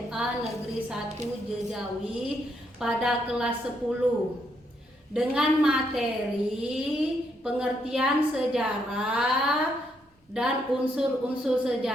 Negeri 1 Jejawi pada kelas 10 dengan materi pengertian sejarah dan unsur-unsur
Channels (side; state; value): both; normal; correlation 0.76